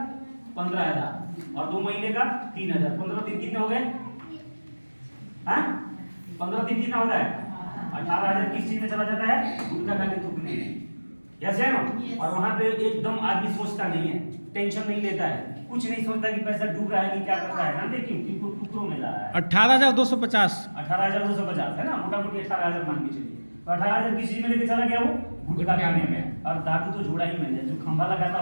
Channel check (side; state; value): both; inverted; correlation -1.00